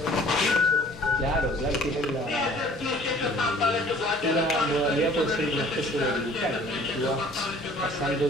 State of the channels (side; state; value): both; normal; correlation 0.52